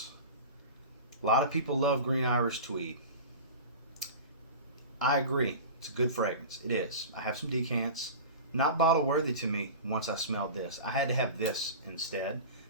A lot of people love Green Irish Tweed. I agree. It's a good fragrance. It is. I have some decants. Not bottle worthy to me once I smelled this. I had to have this instead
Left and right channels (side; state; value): both; inverted; correlation -0.32